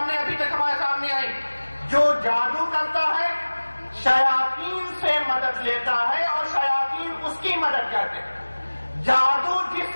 ابھی تک ہمارے سامنے آئی. جو جادو کرتا ہے شیاطین سے مدد لیتا ہے اور شیاطین اس کی مدد کرتے ہیں. جادو جس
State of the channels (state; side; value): inverted; both; correlation -1.00